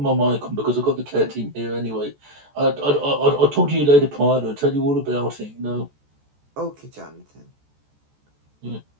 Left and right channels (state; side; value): late; left; 14 ms